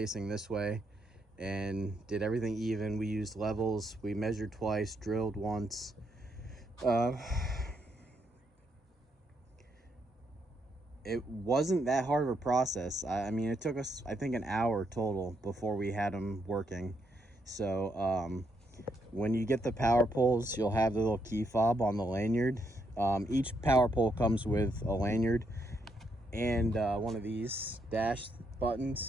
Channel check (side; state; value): both; normal; correlation 0.77